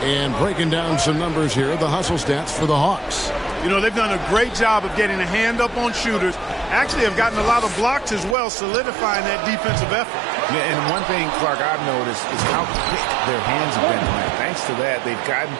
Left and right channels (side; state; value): left; drops out; at 8.3 s